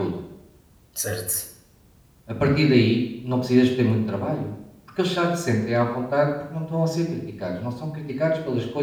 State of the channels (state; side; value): identical; both; correlation 1.00